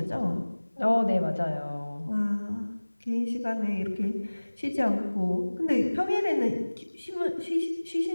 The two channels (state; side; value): inverted; both; correlation -1.00